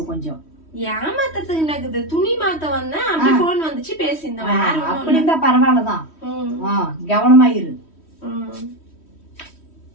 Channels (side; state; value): right; late; 3.1 ms